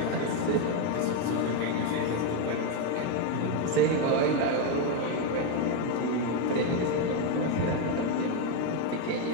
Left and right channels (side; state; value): both; different; correlation 0.02